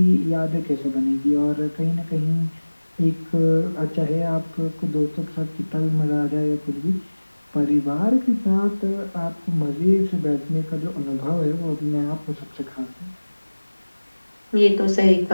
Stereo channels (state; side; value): inverted; both; correlation -1.00